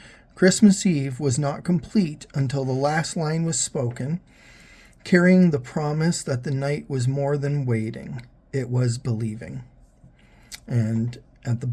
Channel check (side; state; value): both; identical; correlation 1.00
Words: Christmas Eve was not complete until the last line was spoken, carrying the promise that the night was more than waiting, it was believing. And at the